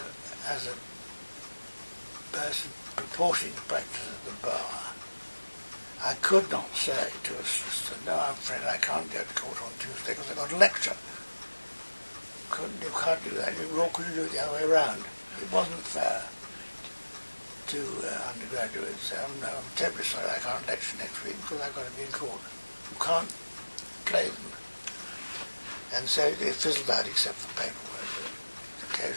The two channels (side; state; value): both; inverted; correlation -1.00